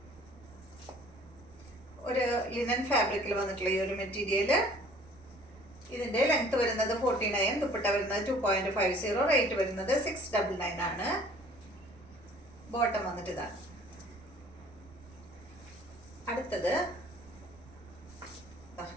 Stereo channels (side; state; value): right; noise; rumble, 23 dB below the sound